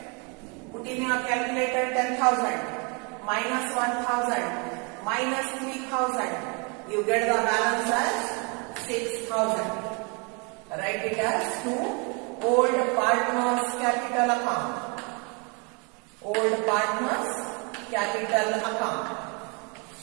Put in your calculator 10,000 minus 1,000 minus 3,000. You get the balance as 6,000. Write it as to old partners capital account. Old partners capital account.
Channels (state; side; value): quieter; left; 33.4 dB